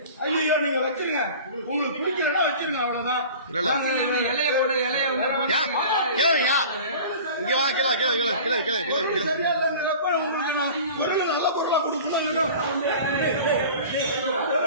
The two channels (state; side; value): inverted; both; correlation -0.40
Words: ஐயோ, நீங்க வச்சிருங்க, உங்களுக்கு பிடிக்கிறதா வச்சிருங்க, அவ்வளவுதான். இலைய போடு, இலைய இங்க வா, கீழே கீழே கீழே கீழே கீழே கீழே சரியா இல்லைங்கிறப்ப உங்களுக்கு நான் பொருள் நல்ல பொருளா கொடுக்கணும்.